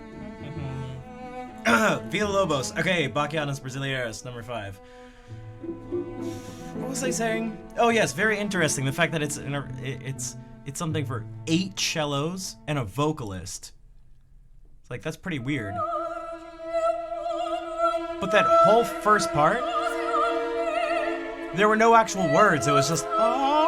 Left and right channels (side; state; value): both; identical; correlation 1.00